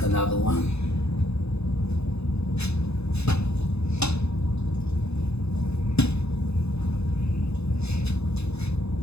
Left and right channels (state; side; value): late; right; 0.79 ms